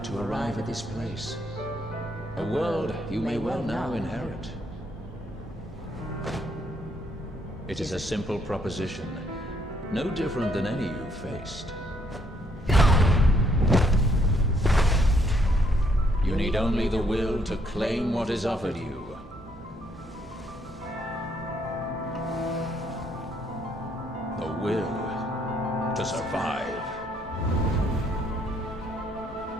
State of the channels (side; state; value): both; normal; correlation 0.70